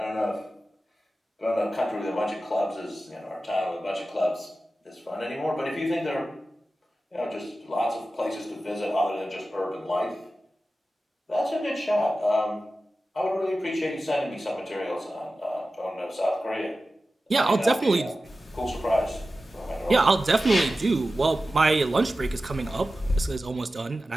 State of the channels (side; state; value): both; normal; correlation 0.94